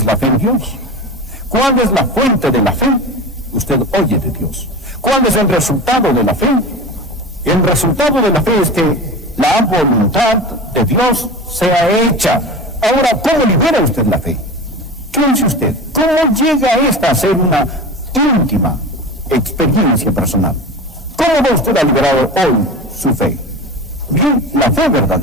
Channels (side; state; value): both; normal; correlation 0.31